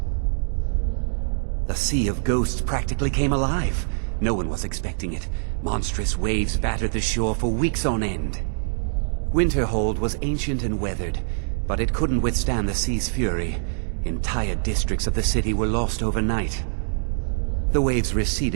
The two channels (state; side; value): silent; left; digital silence